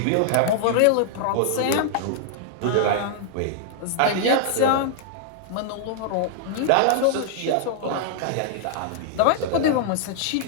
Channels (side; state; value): both; different; correlation -0.01